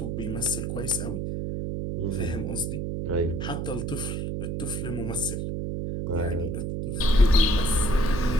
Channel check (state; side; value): noise; right; hum, 2 dB below the sound